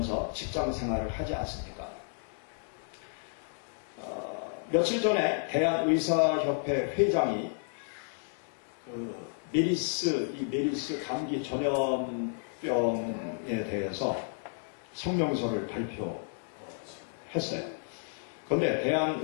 직장생활을 하지 않습니까? 며칠 전에 대한의사협회 회장이 메리스 감기 전염병에 대해서 성명서를 발표했어요. 그런데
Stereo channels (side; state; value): right; silent; 57 dB below the other